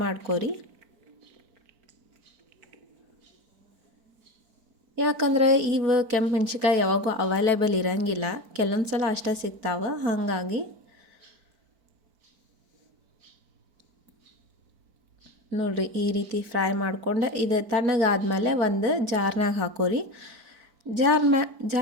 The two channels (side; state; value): left; late; 4.5 ms